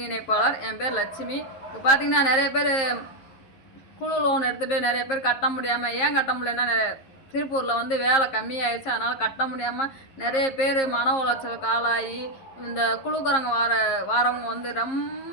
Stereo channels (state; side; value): late; right; 11 ms